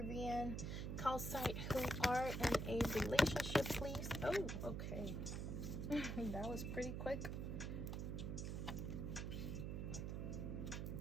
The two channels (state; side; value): noise; right; hum, 2 dB below the sound